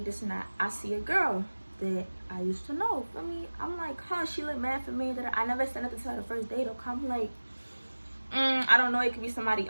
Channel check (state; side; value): inverted; both; correlation -1.00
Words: and that. I see a girl that I used to know. For me, I'm like, huh, she look mad for me. That I never said nothing to her the first date. Or I'm like, I don't know. It could be somebody